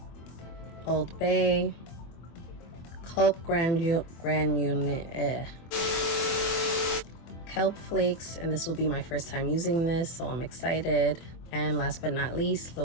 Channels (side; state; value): right; late; 24 ms